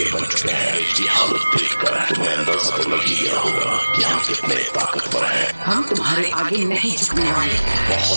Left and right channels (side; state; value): both; inverted; correlation -1.00